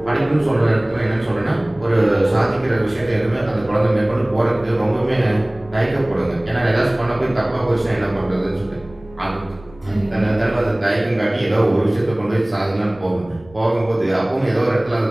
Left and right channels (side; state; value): right; noise; rumble, 23 dB below the sound